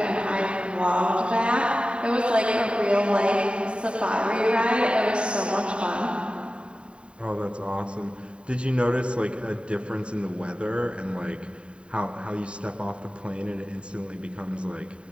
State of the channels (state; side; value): late; left; 0.054 ms